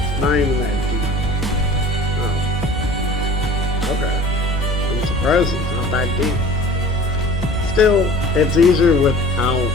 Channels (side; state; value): both; normal; correlation 0.43